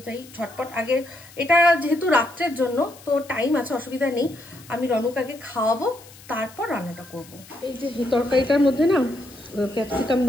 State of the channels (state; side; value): noise; left; hiss, 21 dB below the sound